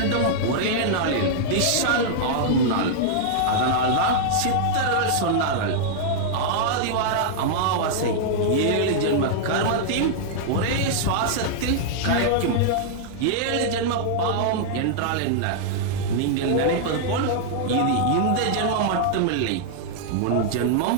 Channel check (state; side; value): different; both; correlation -0.01